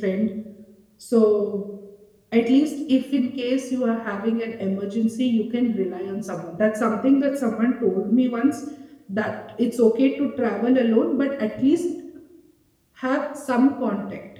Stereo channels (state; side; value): identical; both; correlation 1.00